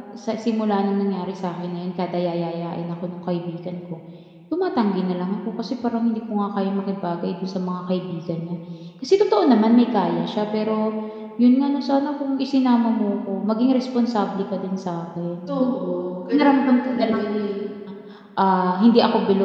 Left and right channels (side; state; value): both; identical; correlation 1.00